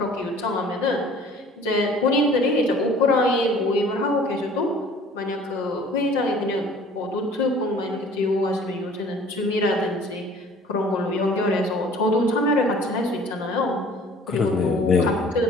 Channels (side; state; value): both; normal; correlation 0.50